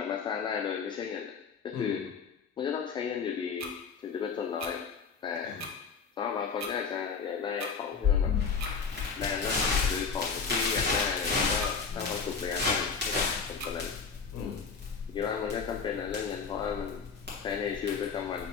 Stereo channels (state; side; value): quieter; right; 5.7 dB